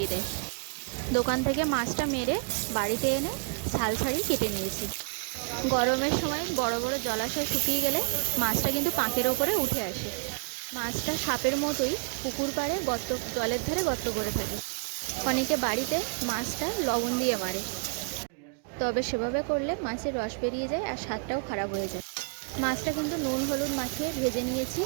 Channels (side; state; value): left; quieter; 38.7 dB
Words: দেয়। দোকান থেকে মাছটা মেরে বাড়িতে এনে ছাল ছাড়িয়ে কেটে নিয়েছি। গরমের সময় বড় বড় জলাশয় শুকিয়ে গেলে মাছটা কিন্তু পাঁকের ওপরে উঠে আসে। মাছটা সাপের মতোই পুকুর পাড়ে গর্ত, জলের ধারে গর্ত করে থাকে। অনেকে বাড়িতে মাছটা লবণ দিয়ে মারে, তবে সেভাবে করলে মাছের রস বেরিয়ে যায় আর স্বাদটাও খারাপ হয়ে যায়। মাছটা কিন্তু নুন হলুদ মাখিয়ে ভেজে নিয়েছি।